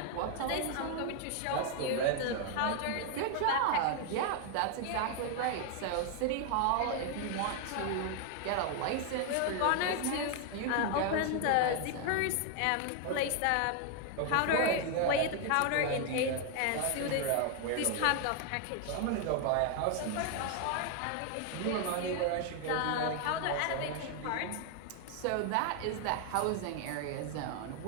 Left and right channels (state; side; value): different; both; correlation 0.00